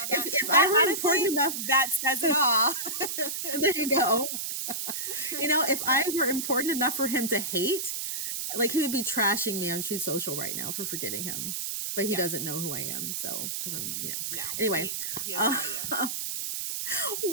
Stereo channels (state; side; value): noise; right; hiss, 3 dB below the sound